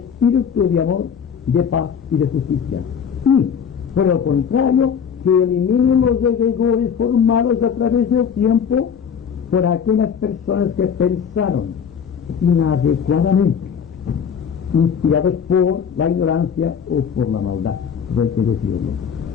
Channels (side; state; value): right; quieter; 7.3 dB